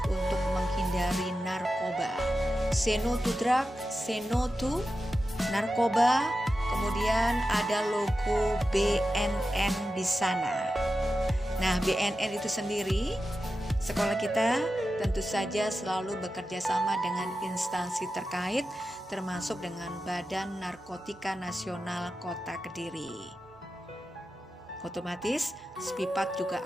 untuk menghindari narkoba. Say no to drug, say no to narkoba. Kemudian ada logo BNN di sana. Nah, BNN itu sendiri, sekolah kita tentu saja selalu bekerja sama dengan instansi terkait, termasuk dengan Badan Narkotika Nasional Kota Kediri. Otomatis, SPIPAT juga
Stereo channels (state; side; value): normal; both; correlation 0.92